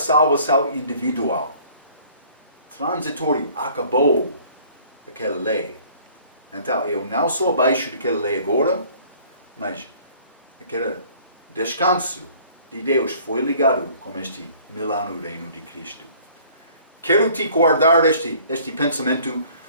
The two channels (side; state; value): both; inverted; correlation -0.54